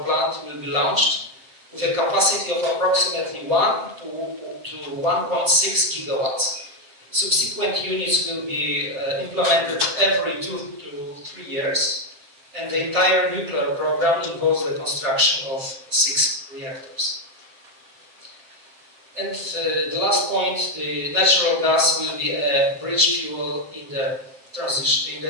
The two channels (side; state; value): left; late; 7.5 ms